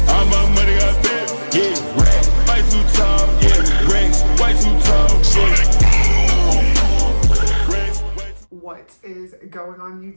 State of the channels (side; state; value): both; inverted; correlation -1.00